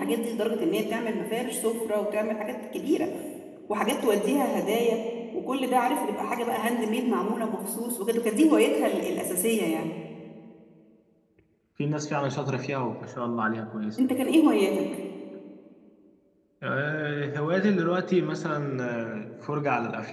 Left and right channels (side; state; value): both; identical; correlation 1.00